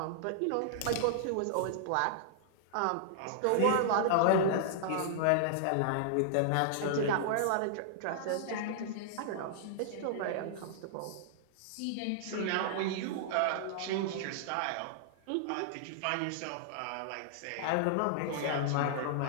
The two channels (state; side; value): different; both; correlation -0.01